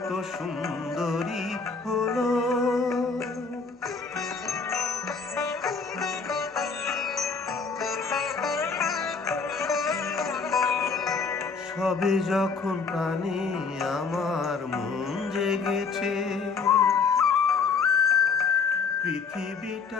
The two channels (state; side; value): quieter; right; 5.1 dB